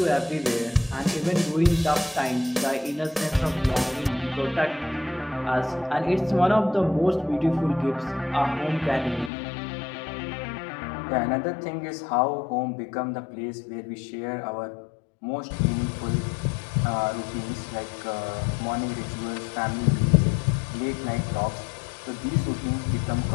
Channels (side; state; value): right; drops out; at 9.3 s